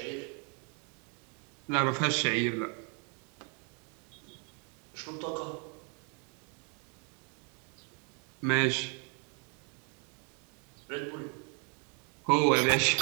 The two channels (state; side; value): quieter; left; 37.4 dB